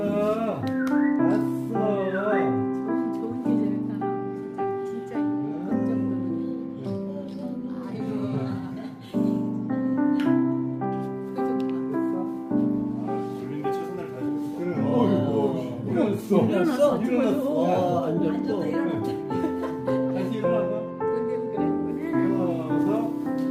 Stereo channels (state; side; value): identical; both; correlation 1.00